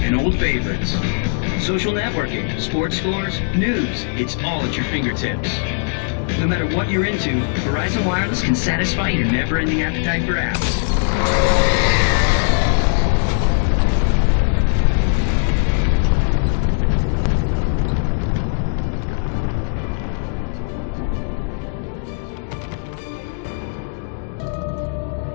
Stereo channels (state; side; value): silent; right; digital silence